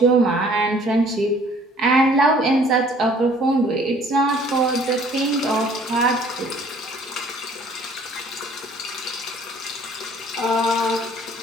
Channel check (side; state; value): both; normal; correlation 0.56